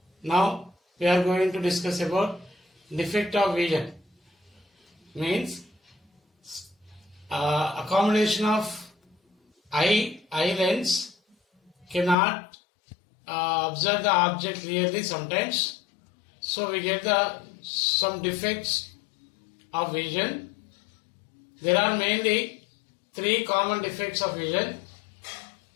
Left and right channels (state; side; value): drops out; right; at 12.2 s